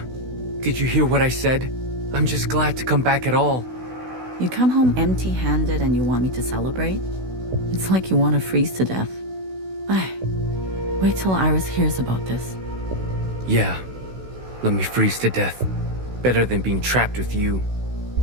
did you hear what I said? I'm just glad to come back at all. You come home empty-handed and you want me to celebrate? It's like you want to freeze to death. Wait till Iris hears about this. Yeah, let me freeze to death. Better than being trapped with you.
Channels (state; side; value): late; left; 16 ms